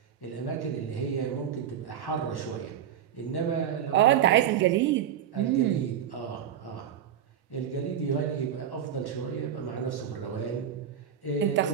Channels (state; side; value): quieter; left; 9.5 dB